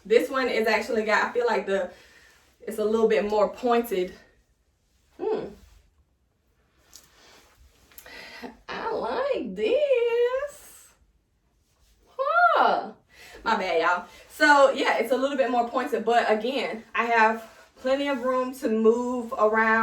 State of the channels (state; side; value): identical; both; correlation 1.00